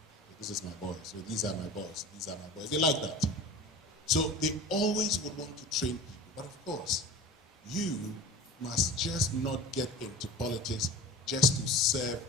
This is my boy, so these are my boys, these are my boys. They like that. So they always would want to train people. But of course, you must just not get into politics just to serve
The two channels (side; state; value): both; normal; correlation 0.37